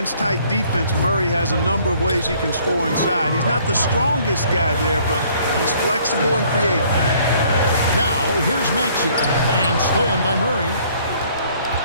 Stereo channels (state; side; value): inverted; both; correlation -0.60